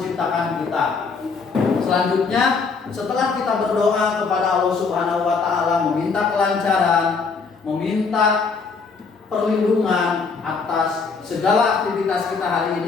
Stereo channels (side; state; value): right; quieter; 4.9 dB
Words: kita. Selanjutnya, setelah kita berdoa kepada Allah Subhanahu wa Ta'ala, meminta kelancaran, meminta perlindungan atas segala aktivitas kita hari